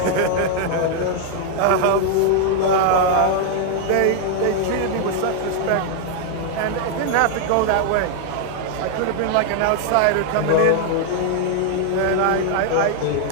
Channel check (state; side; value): different; both; correlation 0.00